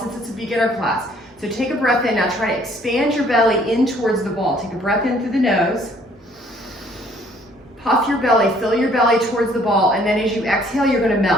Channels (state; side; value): normal; both; correlation 0.61